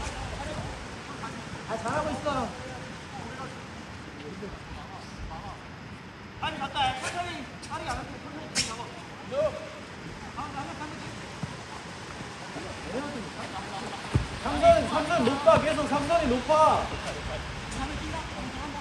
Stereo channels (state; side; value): identical; both; correlation 1.00